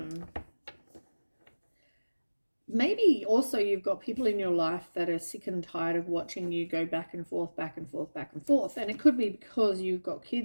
Maybe also you've got people in your life that are sick and tired of watching you go back and forth, back and forth, back and forth. And it could be because you've got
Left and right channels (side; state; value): both; inverted; correlation -1.00